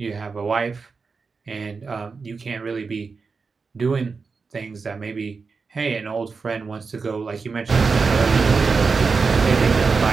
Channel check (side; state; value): left; quieter; 4.8 dB